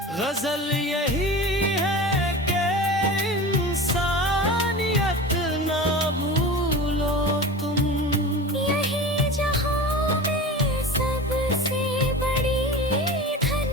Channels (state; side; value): normal; both; correlation 0.33